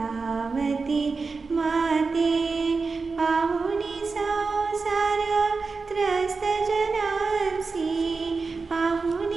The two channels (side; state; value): left; quieter; 4.4 dB